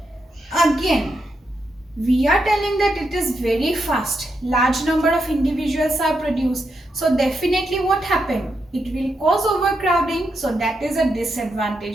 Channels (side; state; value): both; normal; correlation 0.83